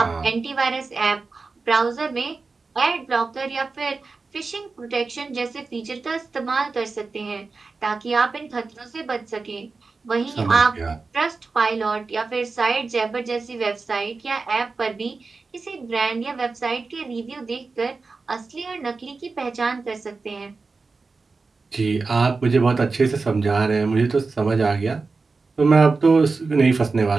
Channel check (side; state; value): left; quieter; 4.2 dB